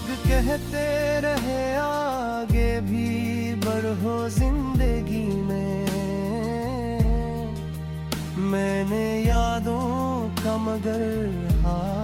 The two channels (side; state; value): both; identical; correlation 1.00